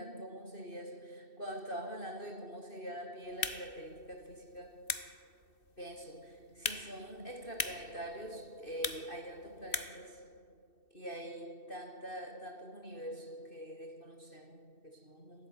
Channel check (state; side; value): late; right; 2.6 ms